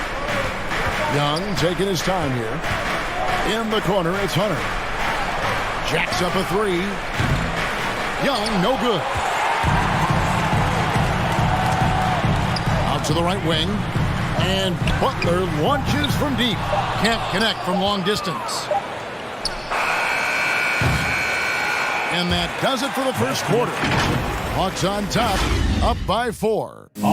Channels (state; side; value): identical; both; correlation 1.00